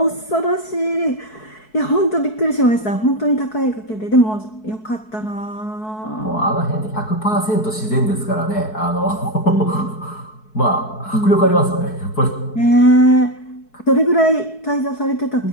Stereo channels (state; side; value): late; right; 4.6 ms